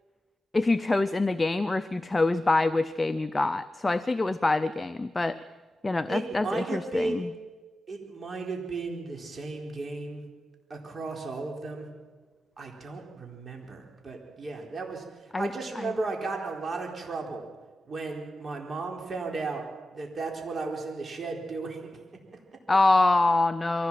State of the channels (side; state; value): both; normal; correlation 0.94